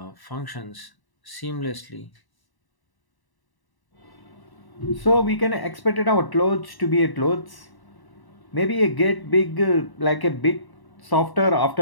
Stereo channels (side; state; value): right; late; 1.0 ms